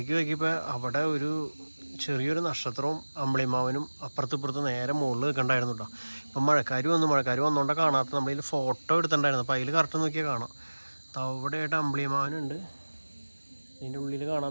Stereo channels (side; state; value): both; inverted; correlation -1.00